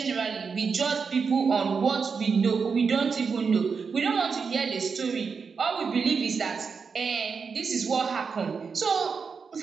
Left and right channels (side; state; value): left; quieter; 5.5 dB